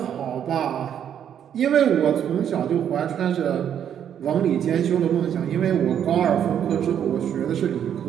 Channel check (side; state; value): left; quieter; 9.3 dB